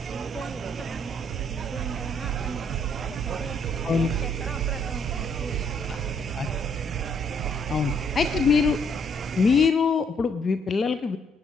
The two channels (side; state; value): both; normal; correlation 0.69